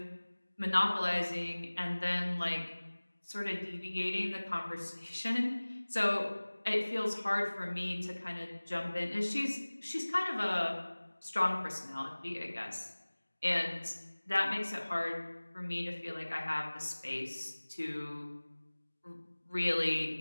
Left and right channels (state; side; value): inverted; both; correlation -1.00